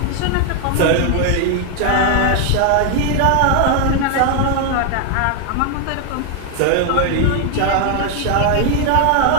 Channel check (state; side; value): different; both; correlation 0.00